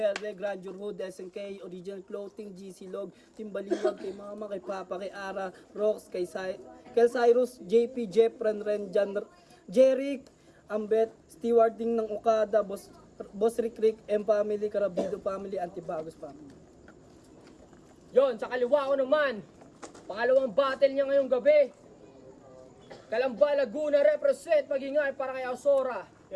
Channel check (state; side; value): identical; both; correlation 1.00